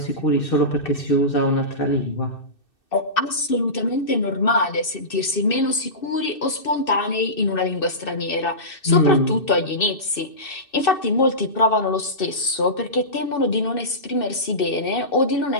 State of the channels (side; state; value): right; late; 2.6 ms